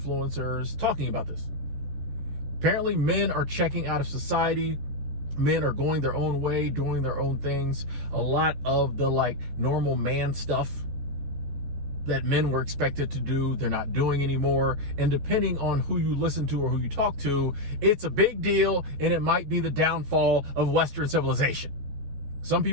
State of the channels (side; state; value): left; late; 14 ms